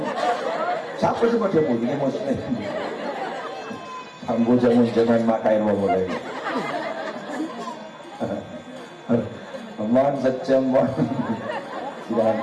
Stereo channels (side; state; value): both; identical; correlation 1.00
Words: siapa sebab dia pun kemos ambu jangan makai rumah mulai aman sejam